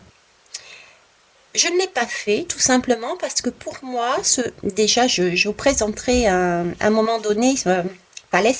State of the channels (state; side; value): identical; both; correlation 1.00